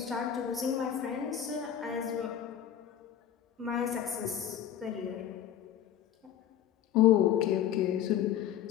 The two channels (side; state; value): right; quieter; 10.1 dB